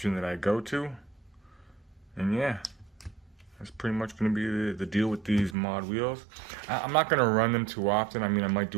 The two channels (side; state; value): left; drops out; at 5.6 s